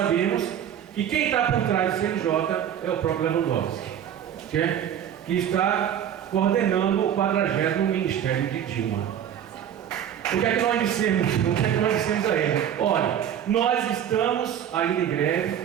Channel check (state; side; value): quieter; left; 9.6 dB